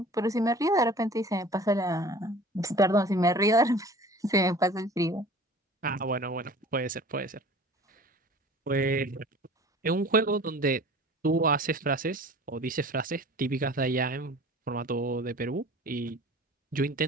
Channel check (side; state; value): both; normal; correlation 0.44